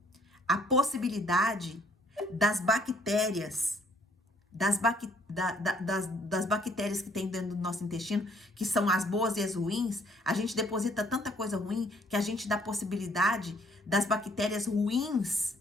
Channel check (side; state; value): both; normal; correlation 0.63